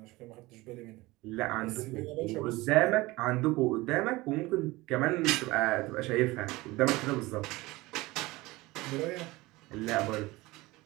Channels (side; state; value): left; quieter; 20.8 dB